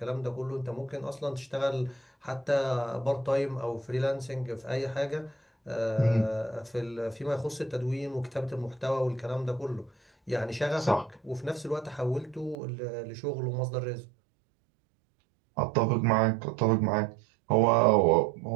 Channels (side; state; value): left; drops out; at 12.6 s